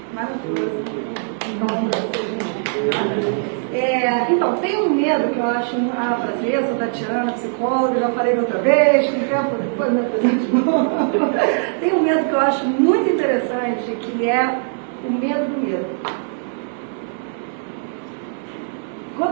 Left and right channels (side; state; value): left; silent; digital silence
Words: maravilhoso. Então, tem um medo que eu acho, prazer, eu sou Tatiana, psicóloga, já falei da outra vez, depois me apresento de novo. Tem um medo que eu acho muito interessante, que é o medo do medo.